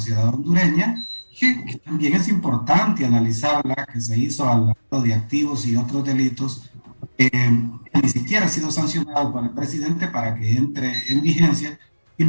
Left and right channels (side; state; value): both; inverted; correlation -1.00